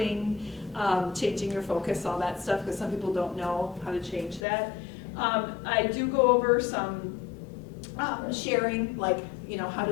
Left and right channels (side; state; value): right; drops out; at 4.4 s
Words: changing your focus, all that stuff, because some people don't know how to change that. I do go over some sharing, like, how